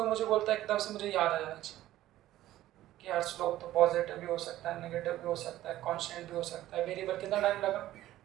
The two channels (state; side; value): quieter; left; 14.4 dB